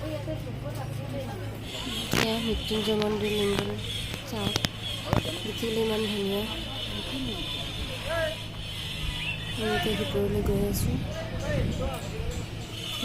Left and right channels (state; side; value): identical; both; correlation 1.00